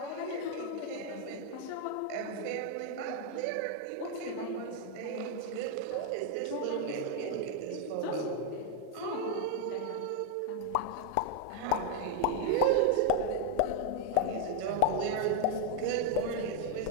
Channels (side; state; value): both; different; correlation 0.00